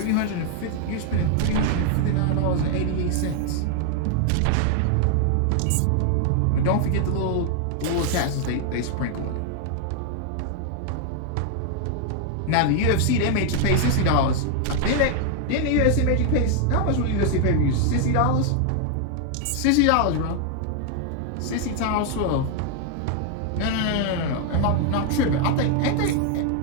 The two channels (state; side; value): different; both; correlation 0.00